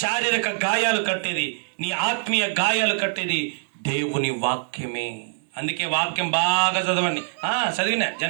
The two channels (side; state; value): left; silent; 63 dB below the other